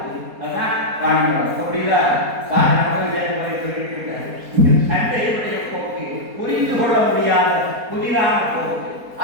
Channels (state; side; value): late; left; 4.2 ms